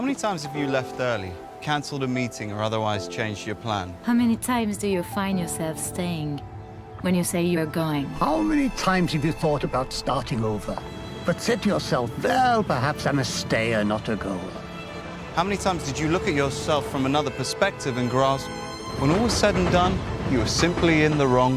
times have you left early, cancelled a meeting or otherwise changed your plan? How many times do you find yourself staying when you say you're going? How many times have you thought about starting over, but said to yourself, well, perhaps I'm a stayer, not a goer? How many times did you look at yourself from another perspective and grasp, when all was said and done, you were simply in the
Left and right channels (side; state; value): both; identical; correlation 1.00